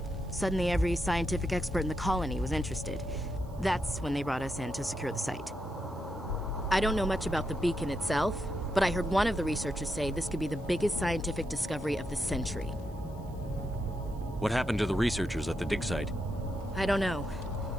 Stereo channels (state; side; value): noise; right; hiss, 29 dB below the sound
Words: Suddenly, every scientific expert in the colony was interested. That's when they brought us in to secure the site. I don't know much about the beacon itself, but I heard one of the researchers say this could be the biggest scientific discovery of the century. What happened to the researchers at the dig site? I don't know.